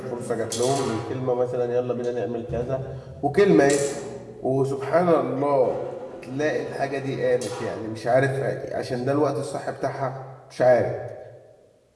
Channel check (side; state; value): both; identical; correlation 1.00